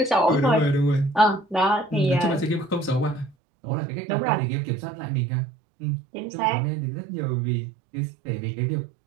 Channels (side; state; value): left; drops out; at 3.4 s